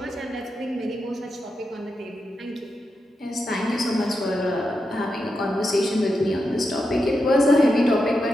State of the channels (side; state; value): both; normal; correlation 0.87